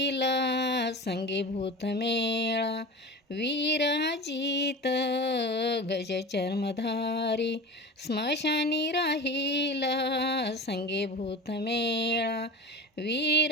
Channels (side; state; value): both; normal; correlation 0.31